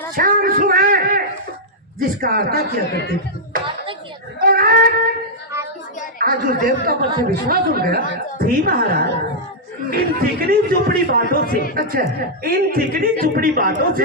शाम सुबह जिसका आरता किया करती थी, और आज उस देवता पर से विश्वास उठ गया। जी महाराज, इन चिकनी चुपड़ी बातों से, अच्छा इन चिकनी चुपड़ी बातों से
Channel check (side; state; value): both; normal; correlation -0.07